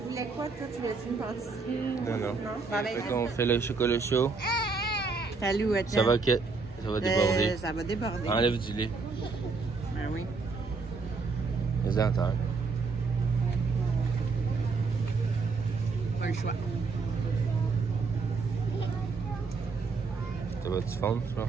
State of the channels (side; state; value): left; quieter; 4.4 dB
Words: voulais quoi, toi? Tu voulais une pâtisserie? Non, non. Non? Ben, Fait qu'on fait le chocolat chaud. Salut, Ça va déborder. Ça va déborder. Enlève du lait. Ben oui. Les entendre. Pas le choix. Ça va-tu fondre, ça?